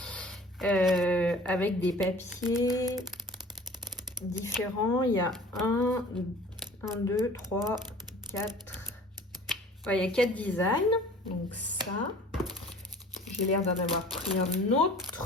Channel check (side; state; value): both; normal; correlation 0.46